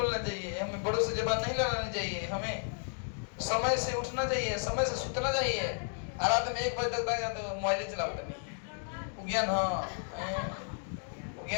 चाहिए, हमें बड़ों से जबान नहीं लड़ानी चाहिए, हमें समय से उठना चाहिए, समय से सुतना चाहिए। रात में 1 बजे तक बैठा तो मोबाइल चलाओ नहीं। ज्ञान हाँ,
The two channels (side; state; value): right; silent; 56 dB below the other